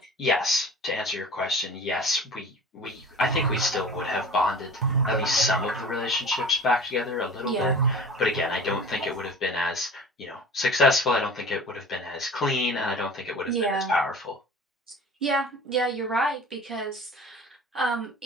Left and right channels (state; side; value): normal; both; correlation 0.40